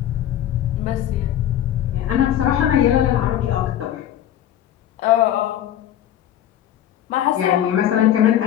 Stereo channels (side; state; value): right; quieter; 11.4 dB